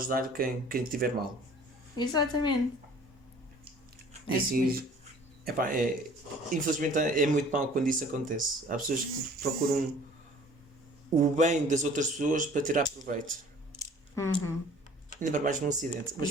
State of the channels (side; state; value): both; normal; correlation 0.51